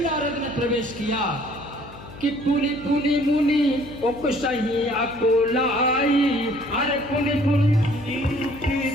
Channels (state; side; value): noise; left; hum, 17 dB below the sound